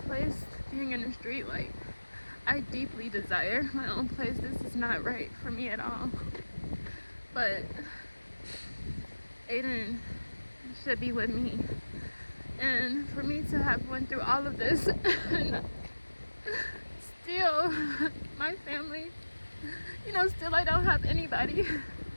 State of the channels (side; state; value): both; inverted; correlation -1.00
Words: being in the street. I deeply desire my own place. This is not right for me at all. But Aiden should be with me. And for me to have went through all of this and still my family, still I don't have anybody.